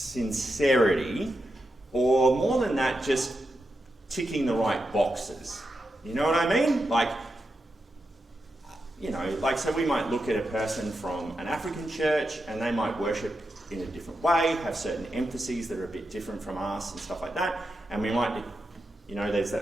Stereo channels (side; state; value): both; normal; correlation 0.87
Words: or more than that, just ticking the right boxes. You know what I mean? So we might look at a person from an African church and they might worship in a different way, have certain emphases that are a bit different from us and stuff like that. And we might, there's